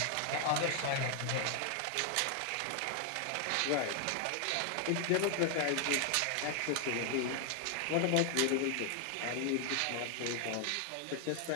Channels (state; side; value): different; both; correlation 0.00